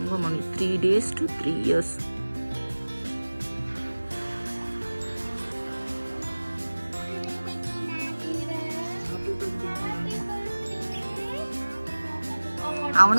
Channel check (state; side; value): inverted; both; correlation -1.00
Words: 3 days to 3 years.